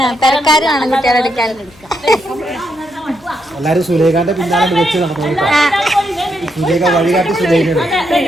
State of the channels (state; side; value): noise; left; hum, 27 dB below the sound